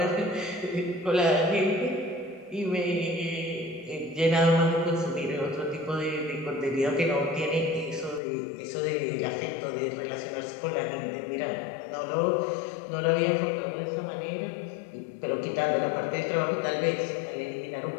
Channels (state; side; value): drops out; right; at 8.2 s